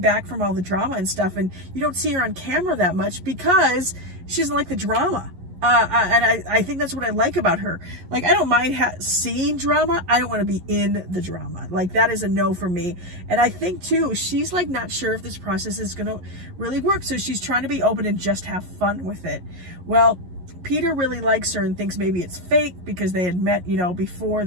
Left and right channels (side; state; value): left; late; 11 ms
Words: from all the drama and stuff, and you don't see her on camera that much because she doesn't like the drama. And I think that's what I like about her. Like, I don't mind seeing drama. I don't want to be in the drama. Like, that is a no for me. And I think, too, she's, like, not sure if this process is going to really work. So she's trying to be open and just have fun with it. Well, Peter really likes her and thinks maybe it's fake because they had met, you know, before